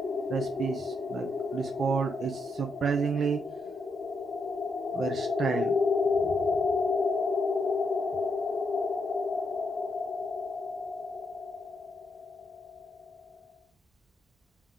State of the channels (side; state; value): both; normal; correlation 0.80